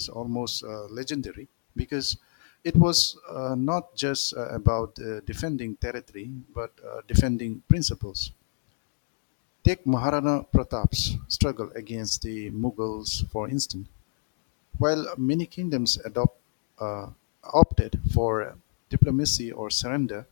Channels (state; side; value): silent; right; digital silence